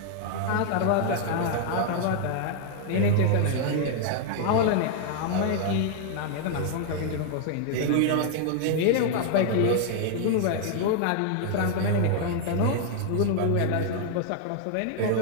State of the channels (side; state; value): both; different; correlation 0.00